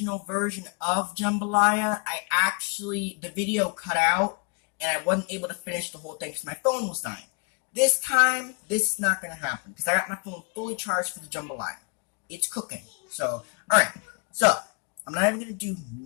version of jambalaya, the video cut out, and I wasn't able to finish the whole thing because my phone was dying. This time, this is not going to happen because I got my phone fully charged for the jambalaya. It's cooking. So, alright. So, I'm not even going to do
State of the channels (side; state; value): right; quieter; 35.6 dB